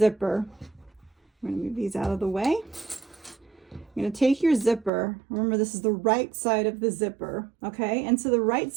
I'm going to move these out of the way. You're going to take your zipper. Remember, this is the right side of the zipper, okay? And so the right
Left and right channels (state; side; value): drops out; left; at 4.9 s